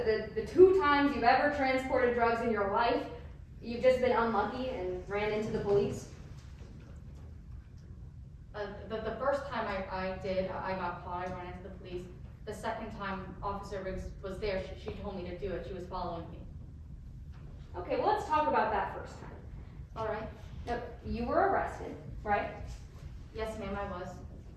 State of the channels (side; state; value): both; identical; correlation 1.00